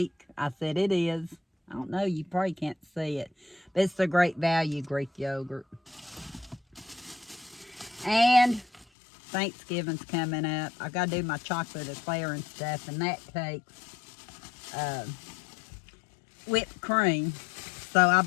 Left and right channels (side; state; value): right; drops out; at 8.8 s